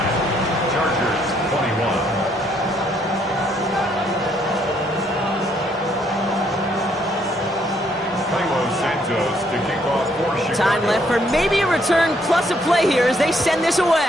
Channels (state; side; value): normal; both; correlation 0.69